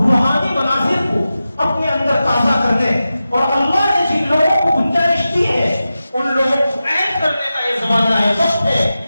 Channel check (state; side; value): inverted; both; correlation -0.93